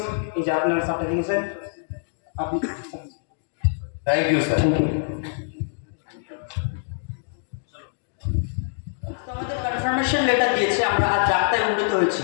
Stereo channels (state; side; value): silent; right; digital silence